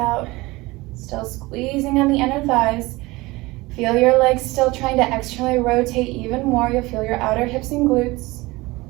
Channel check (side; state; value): left; quieter; 21.6 dB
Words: Still squeezing on the inner thighs. Feel your legs still trying to externally rotate even more. You'll feel your outer hips and glutes.